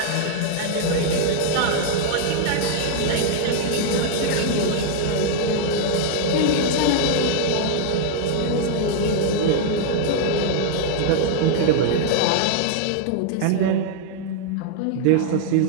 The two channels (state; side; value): different; both; correlation -0.01